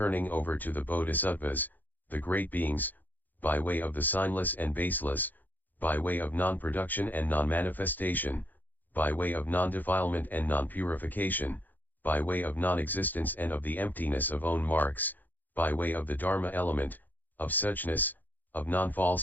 over to the Bodhisattvas, the great beings, by way of the signless and baseless, by way of non-production and non-manifestation, by way of non-defilement and non-purification, by way of non-existence and of the emptiness of own marks, by way of the Dharma element, of suchness, of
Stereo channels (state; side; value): late; right; 0.086 ms